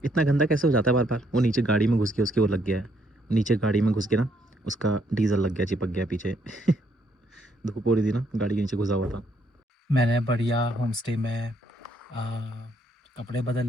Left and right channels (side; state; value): both; normal; correlation 0.71